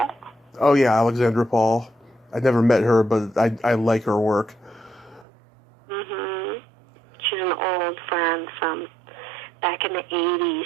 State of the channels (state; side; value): drops out; left; at 5.2 s